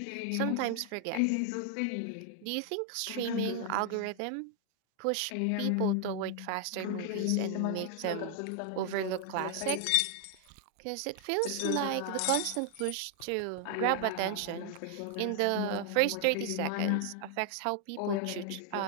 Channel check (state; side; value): different; both; correlation 0.00